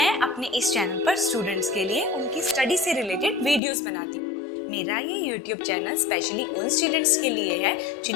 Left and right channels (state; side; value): drops out; right; at 3.6 s